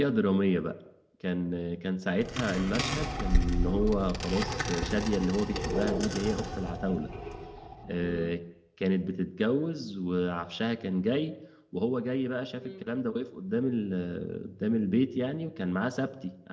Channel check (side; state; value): both; identical; correlation 1.00